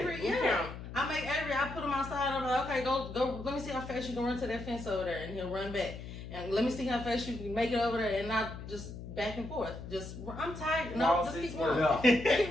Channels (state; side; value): noise; left; hum, 11 dB below the sound